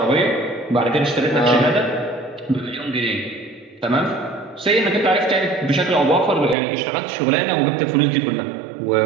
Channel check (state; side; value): drops out; left; at 6.6 s